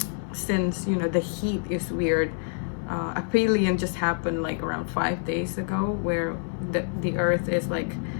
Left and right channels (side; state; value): right; silent; 56 dB below the other